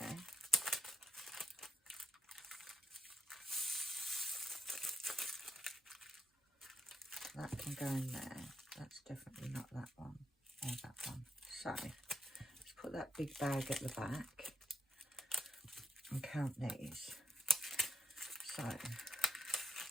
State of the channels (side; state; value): both; normal; correlation 0.80